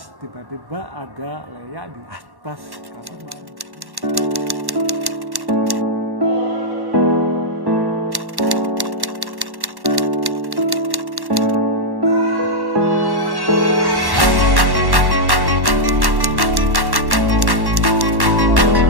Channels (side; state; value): left; late; 1.1 ms